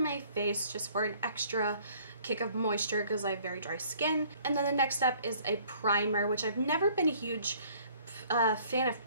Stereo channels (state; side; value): inverted; both; correlation -0.57